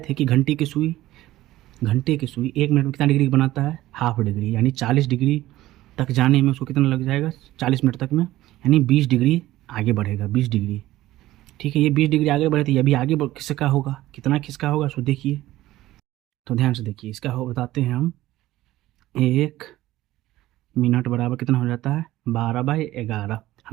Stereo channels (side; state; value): left; quieter; 15.8 dB